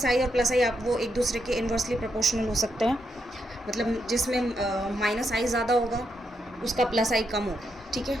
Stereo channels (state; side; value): normal; both; correlation 0.81